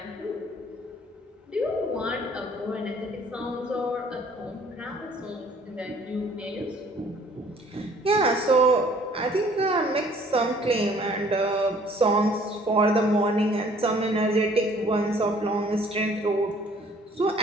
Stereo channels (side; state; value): both; normal; correlation 0.56